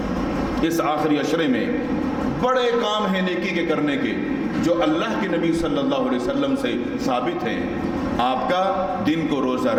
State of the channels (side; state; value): both; identical; correlation 1.00